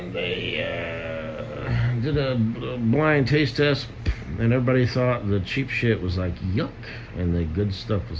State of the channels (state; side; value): identical; both; correlation 1.00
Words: they did a blind taste test, and everybody thought the cheap shit was like yuck, and the good stuff